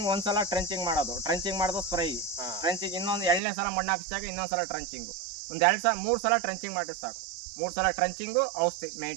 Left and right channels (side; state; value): left; drops out; at 3.4 s